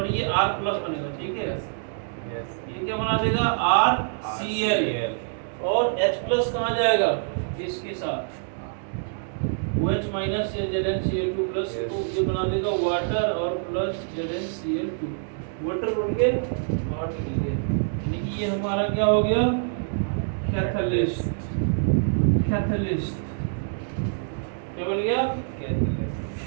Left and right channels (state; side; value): silent; left; digital silence